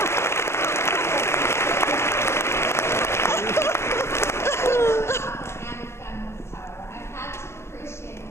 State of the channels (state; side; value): late; right; 0.13 ms